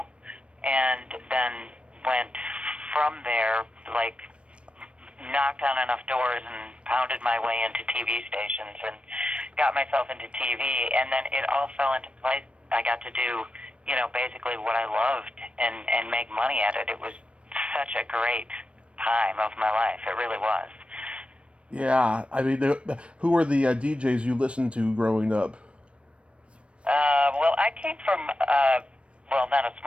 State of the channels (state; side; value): late; left; 0.060 ms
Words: and then went from there, like, knocked on enough doors and pounded my way into TV stations and got myself into TV, and then it all fell into place. I got to do, basically what I loved and make money at it. It was such a great time of my life. It really was. Yeah, I mean, who were the DJs you listened to growing up? Well, I came from, not a